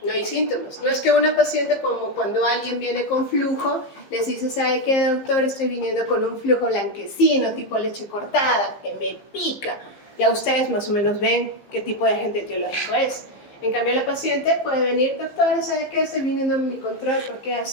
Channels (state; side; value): late; right; 15 ms